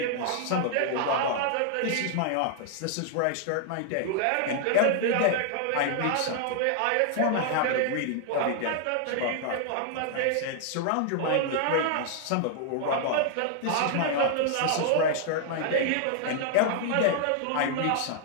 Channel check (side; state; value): both; different; correlation 0.00